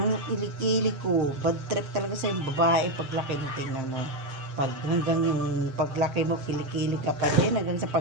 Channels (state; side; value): late; left; 7.6 ms